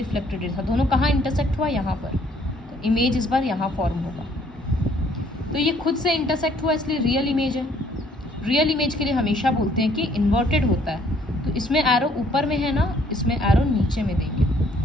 रे था, दोनों कहाँ इंटरसेक्ट हुआ, यहाँ पर, तो इमेज इस बार यहाँ फॉर्म होगा। तो ये खुद से इंटरसेक्ट हुआ इसलिए रियल इमेज है। रियल इमेज के लिए हमेशा बोलते हैं कि इन्वर्टेड होता है, तो इसमें एरो ऊपर में है ना, इसमें एरो नीचे में देंगे,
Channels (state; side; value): normal; both; correlation 0.62